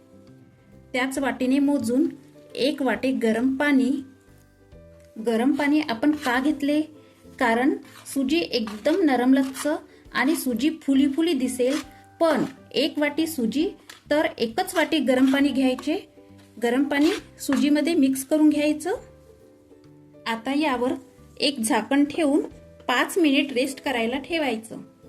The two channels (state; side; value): identical; both; correlation 1.00